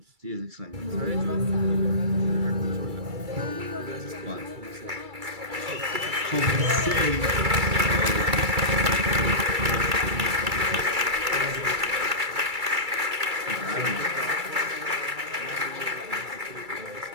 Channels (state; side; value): late; left; 2.3 ms